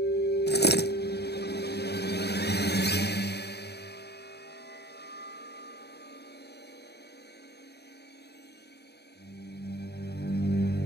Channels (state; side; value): late; right; 0.48 ms